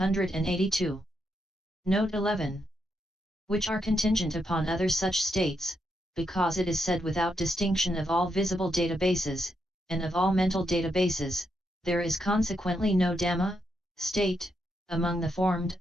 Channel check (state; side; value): normal; both; correlation 0.81